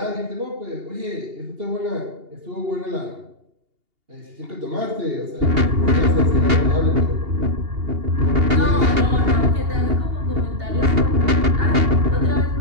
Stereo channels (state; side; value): late; left; 2.8 ms